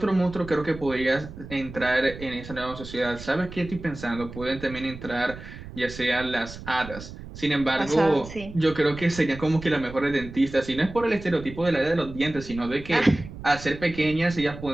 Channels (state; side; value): noise; right; rumble, 13 dB below the sound